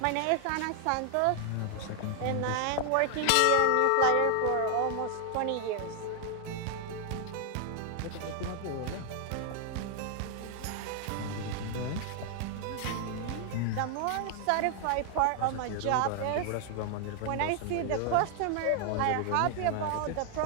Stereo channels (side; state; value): both; different; correlation 0.00